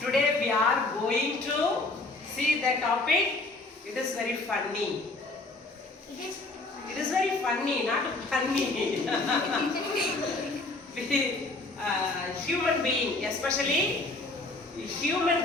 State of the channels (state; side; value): quieter; right; 3.1 dB